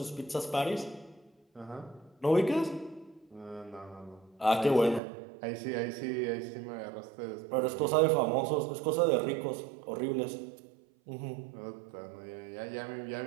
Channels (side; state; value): left; drops out; at 5.0 s